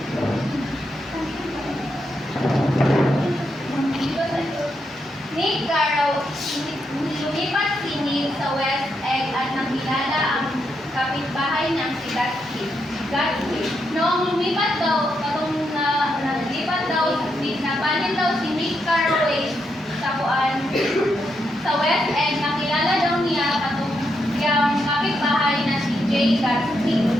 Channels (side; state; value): both; normal; correlation 0.81